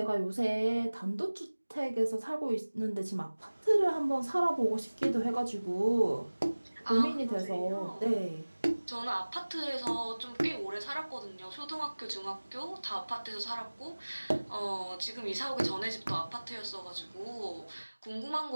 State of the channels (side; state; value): both; inverted; correlation -1.00